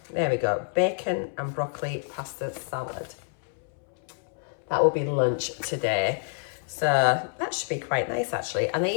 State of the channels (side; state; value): right; silent; 60 dB below the other